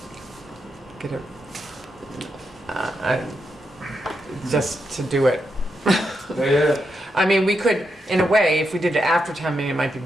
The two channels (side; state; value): both; normal; correlation 0.84